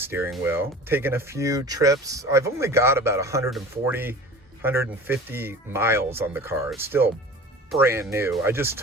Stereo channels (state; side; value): normal; both; correlation 0.40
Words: wheel, taken a few trips, I've only got about 150 miles on the car. It's still brand new. I just